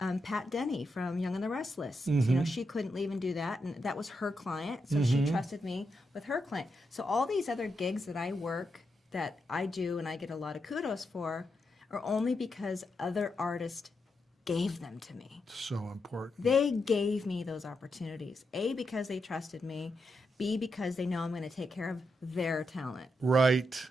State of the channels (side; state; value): both; normal; correlation 0.84